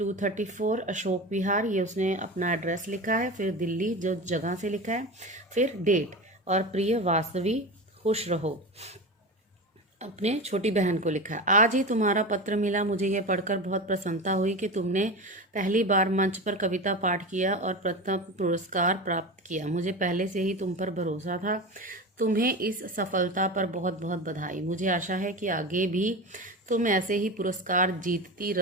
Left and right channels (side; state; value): both; normal; correlation 0.26